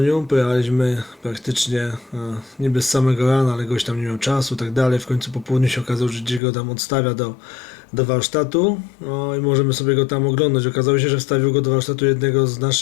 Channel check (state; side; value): drops out; right; at 6.4 s